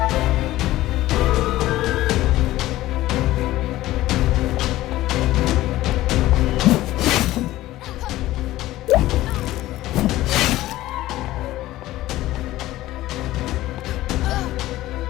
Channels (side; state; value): right; quieter; 16.1 dB